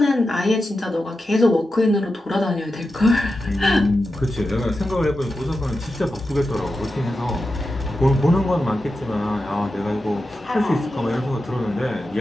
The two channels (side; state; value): both; normal; correlation 0.91